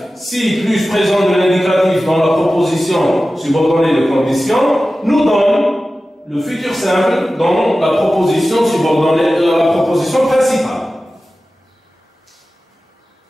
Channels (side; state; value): both; normal; correlation 0.95